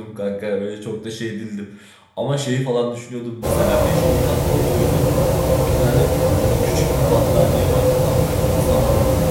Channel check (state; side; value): identical; both; correlation 1.00